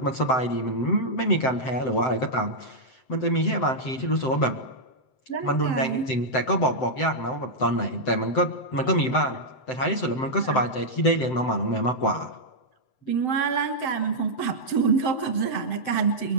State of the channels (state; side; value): late; right; 7.8 ms